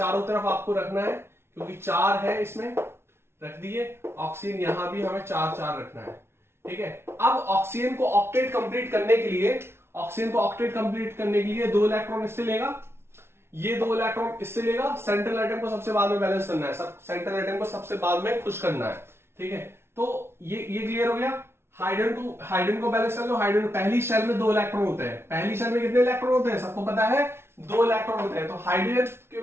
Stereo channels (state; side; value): late; left; 0.12 ms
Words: तरफ आपको रखना है, क्योंकि 4 है इसमें, रख दिए। ऑक्सीजन यहां भी हमें 4 रखना है, ठीक है। अब ऑक्सीजन को ऑक्टेट कंप्लीट करने के लिए, 2 इलेक्ट्रॉन इससे लेगा, ये 2 इलेक्ट्रॉन इससे लेगा। सेंट्रल एटम को सबसे बाद में बैलेंस करना है, सेंट्रल एटम को सबसे बाद में खुश करना है, ठीक है। तो ये क्लियर हो गया। हाइड्रोजन को बैलेंस कर लो। हाइड्रोजन पहली शेल में 2 इलेक्ट्रॉन होते हैं। पहली शेल में कितने इलेक्ट्रॉन होते हैं, सबको पता है, 2 इलेक्ट्रॉन होते हैं। तो